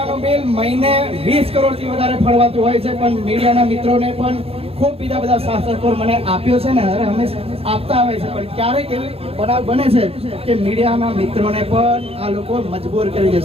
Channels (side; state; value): left; late; 0.28 ms